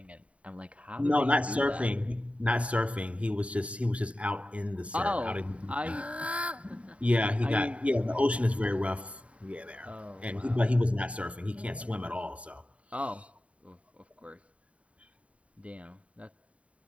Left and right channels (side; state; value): left; late; 0.064 ms